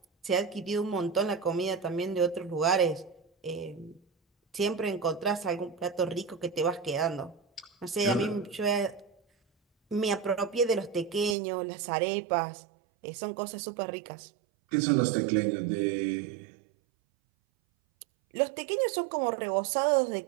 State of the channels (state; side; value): drops out; left; at 11.4 s